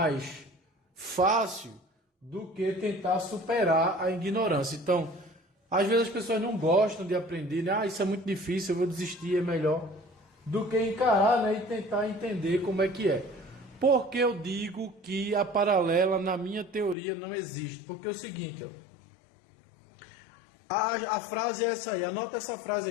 fácil do que tentar superar a ignorância. Então, às vezes as pessoas não gostam de aprender, né? Isso é muito difícil, eu vou desistir, é melhor, do que encarar, né? E tentar entender como é que é. Por que eu digo que a paralela, na minha teoria, não existe? Porque é o seguinte, ó. A frase é essa aí, anota essa frase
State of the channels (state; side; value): drops out; right; at 16.9 s